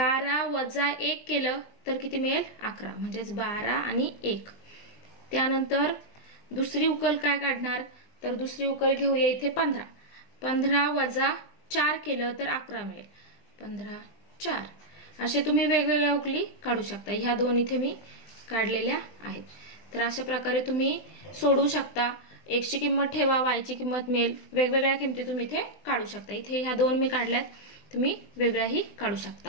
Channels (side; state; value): right; late; 20 ms